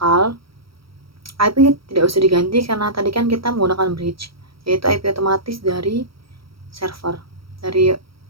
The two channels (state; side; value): late; left; 0.75 ms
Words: IP tidak usah diganti karena tadi kan kita menggunakan bridge, yaitu IP otomatis dari server, dari